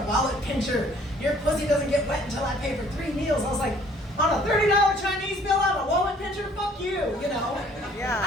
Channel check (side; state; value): both; normal; correlation 0.58